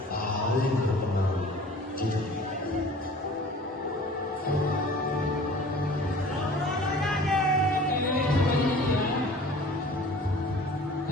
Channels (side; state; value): both; normal; correlation 0.46